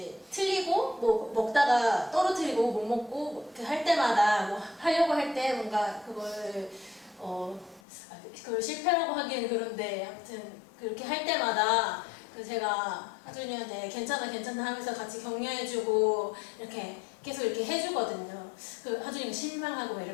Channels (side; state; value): right; drops out; at 7.8 s